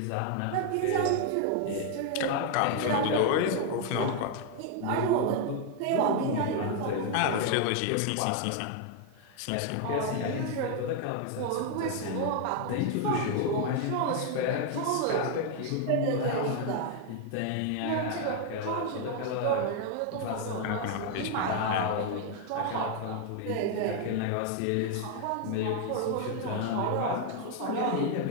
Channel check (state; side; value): different; both; correlation 0.00